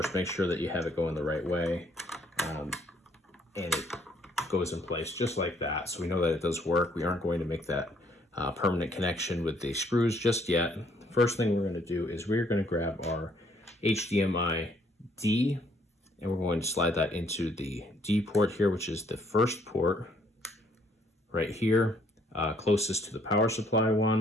Make sure that you have it going the right way, and it goes in place just like that. So we know that it does work. We aren't going to make that permanent connection with the screws just yet. First thing we're going to do is we're going to grab our HDMI D, and we're going to slide that into the D port here, which is the first port right here, closest to the power supply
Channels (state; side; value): normal; both; correlation 0.65